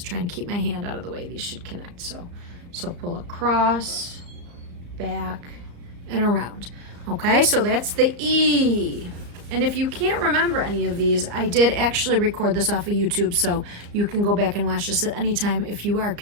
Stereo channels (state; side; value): late; left; 34 ms